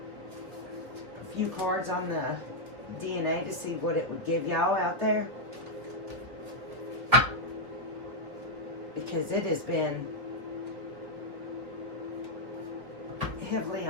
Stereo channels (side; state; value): left; late; 3.3 ms